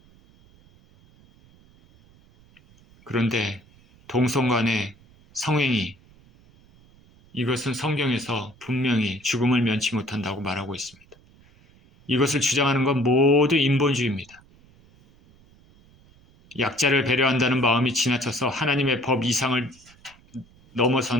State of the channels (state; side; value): noise; right; rumble, 28 dB below the sound